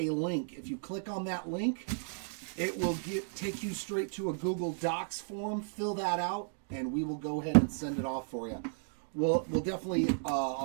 link. If you click on that link, it will take you straight to a Google Docs form. Fill that out, and we will go ahead and send it off for you. We'll definitely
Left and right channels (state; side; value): silent; left; digital silence